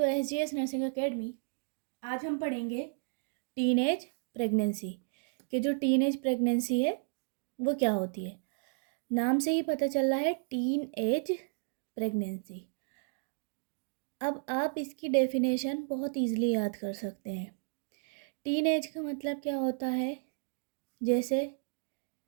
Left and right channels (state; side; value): silent; left; digital silence